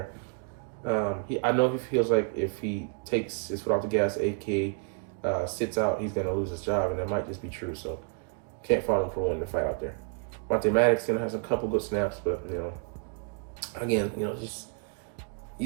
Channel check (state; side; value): quieter; left; 38.7 dB